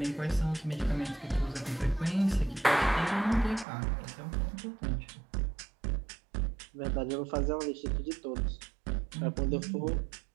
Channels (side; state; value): left; drops out; at 3.7 s